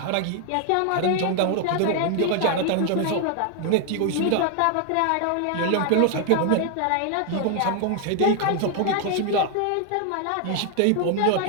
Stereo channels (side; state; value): both; different; correlation 0.00